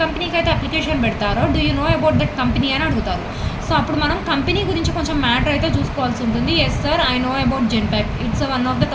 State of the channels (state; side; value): identical; both; correlation 1.00